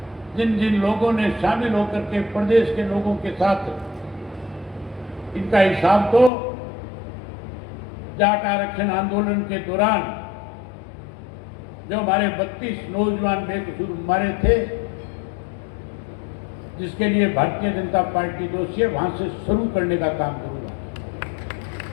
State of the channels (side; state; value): right; drops out; at 6.3 s